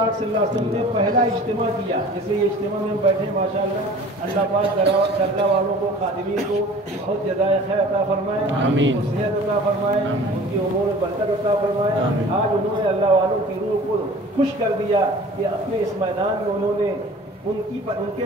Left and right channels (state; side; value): normal; both; correlation 0.45